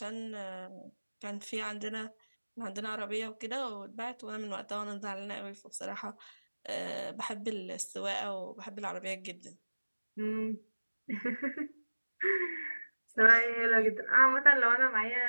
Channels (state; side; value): inverted; both; correlation -1.00